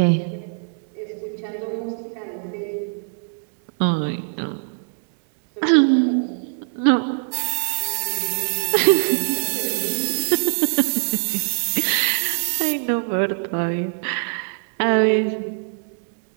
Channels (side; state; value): left; silent; digital silence